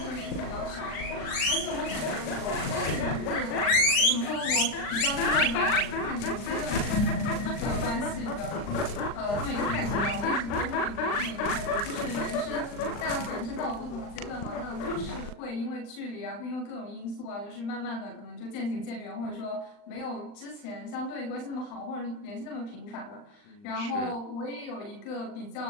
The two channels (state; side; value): late; right; 39 ms